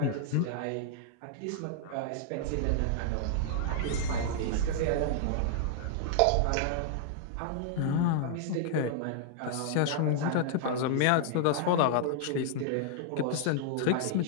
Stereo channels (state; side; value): different; both; correlation -0.01